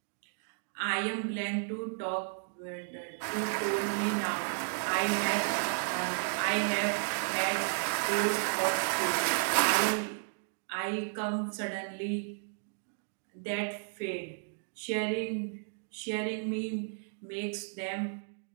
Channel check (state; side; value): silent; left; digital silence